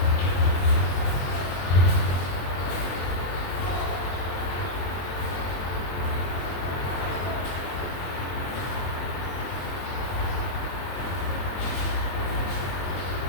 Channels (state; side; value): late; right; 22 ms